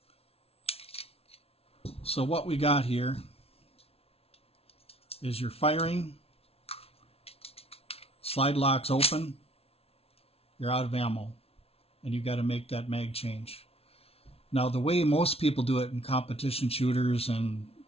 So what we got here is you're firing, slide lock's open, you're out of ammo, and you got to make that mag change. Now, the way most people do it in competition shooters and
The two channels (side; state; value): right; late; 0.29 ms